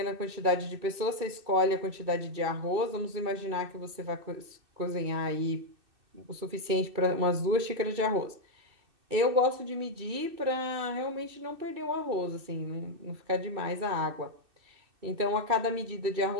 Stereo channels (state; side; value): late; left; 2.6 ms